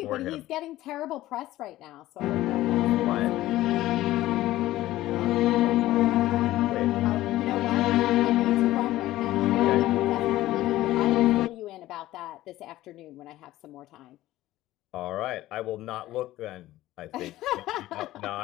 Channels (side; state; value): right; quieter; 15.7 dB